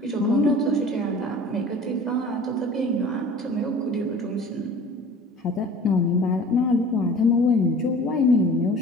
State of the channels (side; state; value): both; normal; correlation 0.44